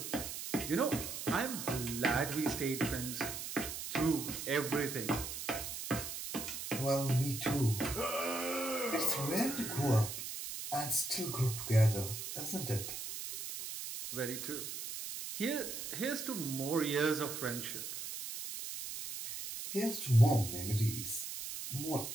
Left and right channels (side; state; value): right; noise; hiss, 6 dB below the sound